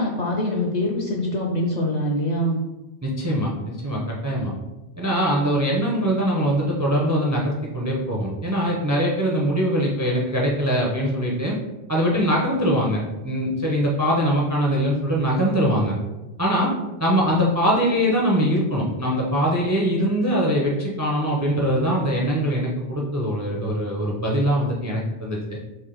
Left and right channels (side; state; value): both; normal; correlation 0.21